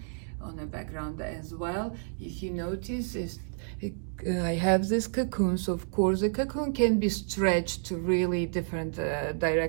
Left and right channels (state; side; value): silent; left; digital silence